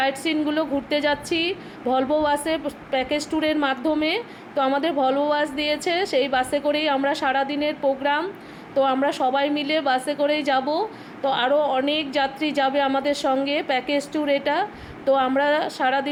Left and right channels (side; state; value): both; identical; correlation 1.00